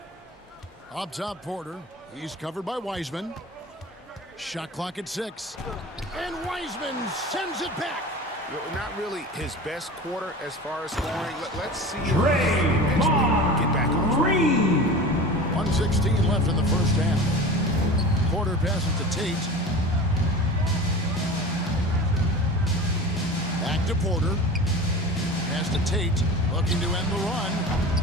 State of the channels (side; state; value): both; normal; correlation 0.35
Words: Up top, Porter. He's covered by Wiseman. Shot clock at 6. And Wiseman sends it back. Not really his best quarter as far as scoring. Let's see if Draymond get back on track. Green. 1:16 left in the first half. Porter passes to Tate. Back to Porter. Pass to Tate. Looking to end the run.